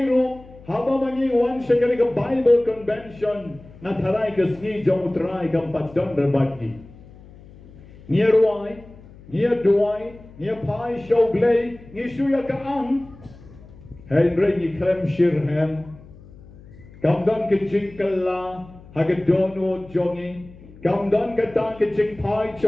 ro haba mangi wan shakari ka Bible convention na taray kasngi jong try kampat don berbagi. Nia ruai, nia duai, nia pai show blay, nia suya kaang. Henry ni krem shirhem. Kamdan ke jingkala, hagadono jongi. Kamdan kata ke jing pai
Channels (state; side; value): noise; left; hum, 21 dB below the sound